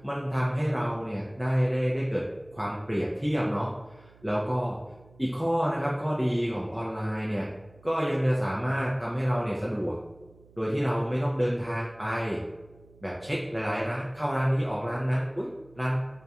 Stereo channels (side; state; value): right; noise; hum, 26 dB below the sound